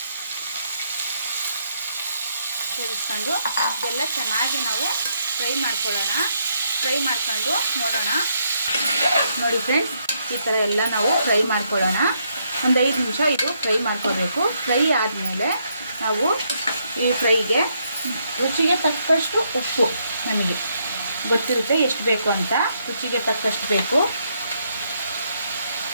ಸೇರಿಸ್ಕೊಂಡು ಇದೆಲ್ಲ ಚೆನ್ನಾಗಿ ನಾವು ಫ್ರೈ ಮಾಡ್ಕೊಳ್ಳೋಣ. ಫ್ರೈ ಮಾಡ್ಕೊಂಡು ನೋಡೋಣ. ನೋಡಿ ಫ್ರೆಂಡ್ಸ್, ಈ ಥರ ಎಲ್ಲ ನಾವು ಫ್ರೈ ಮಾಡ್ಕೊಳ್ಳೋಣ. ಒಂದು 5 ನಿಮಿಷ ಇದು ಫ್ರೈ ಮಾಡ್ಕೋಬೇಕು. ಫ್ರೈ ಆದಮೇಲೆ ನಾವು ಈ ಫ್ರೈಗೆ ರುಚಿಗೆ ತಕ್ಕಷ್ಟು ಉಪ್ಪು, ನಮಗೆ ಗೊತ್ತಿರುತ್ತೆ ಎಷ್ಟು ಬೇಕು ಅಂತ, ರುಚಿಗೆ ತಕ್ಕಷ್ಟು ಬೇಕು.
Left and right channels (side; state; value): both; inverted; correlation -0.75